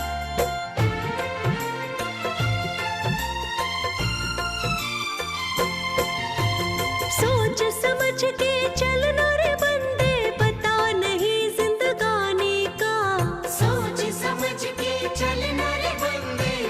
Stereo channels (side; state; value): both; identical; correlation 1.00